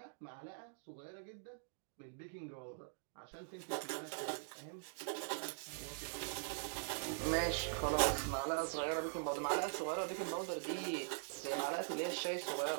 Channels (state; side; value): silent; left; digital silence